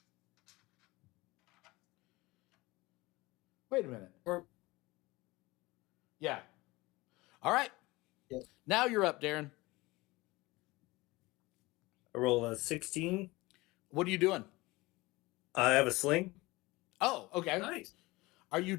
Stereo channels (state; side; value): quieter; right; 21.4 dB